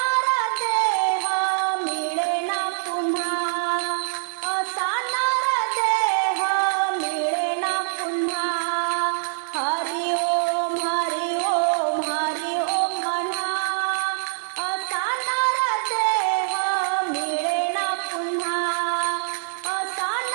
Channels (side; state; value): left; silent; 63 dB below the other